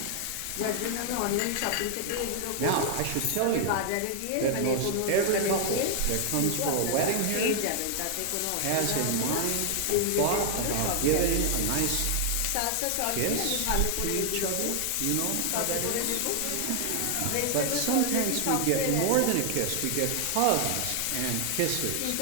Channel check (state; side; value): different; both; correlation 0.00